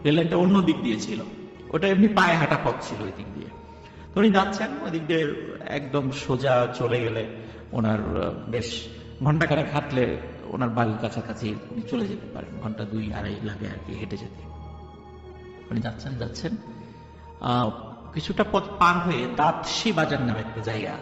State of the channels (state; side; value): identical; both; correlation 1.00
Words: রেল লাইনটা অন্য দিক দিয়ে ছিল, ওটা এমনি পায়ে হাঁটা পথ ছিল ওই দিক দিয়ে। তো উনি যাচ্ছেন ওই দিক দিয়ে, একদম সোজা চলে গেলে ওনার বেশ ঘন্টাখানেক হাঁটলে ওনার বাড়ির কাছাকাছি উনি চলে যেতে পারেন, ঘন্টা 2-2.5 লাগে আর কি হেঁটে যেতে। উনি যাচ্ছেন কিছুটা পথ পার হয়ে দাঁতশি বাজার নামে একটা জায়গা